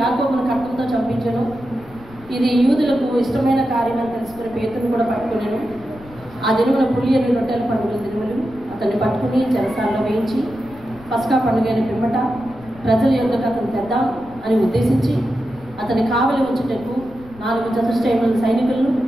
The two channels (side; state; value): left; noise; rumble, 21 dB below the sound